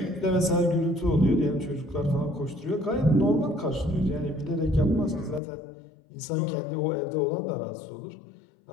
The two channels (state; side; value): drops out; right; at 5.4 s